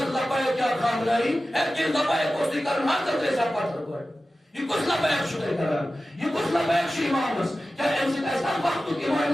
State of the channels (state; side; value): normal; both; correlation 0.95